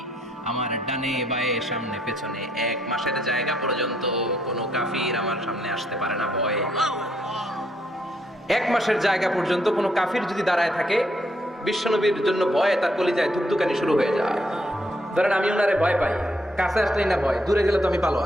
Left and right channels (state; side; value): normal; both; correlation 0.73